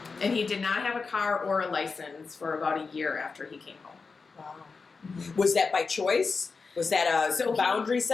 And he did not have a car or a license for about a year after he came home. Wow. Was that by choice? Was that a boundary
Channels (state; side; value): quieter; right; 4.6 dB